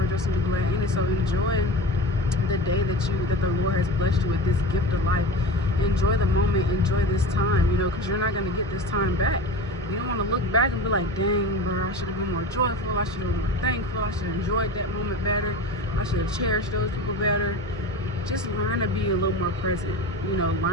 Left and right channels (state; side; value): normal; both; correlation 0.30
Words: and be glad in it. So enjoy the day that the Lord has blessed you with, this gift of life. Enjoy the moment. Enjoy this time, you know, because you're not going to get this time back. You don't want to look back and be like, dang, bro, I should have been more joyful. I should have been more thankful. I should have enjoyed that moment better. I should have cherished those people better. Just learn to be a little more present. You know,